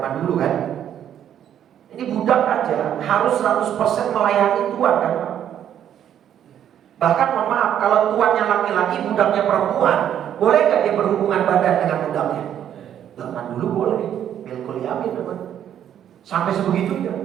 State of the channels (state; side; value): quieter; left; 10.0 dB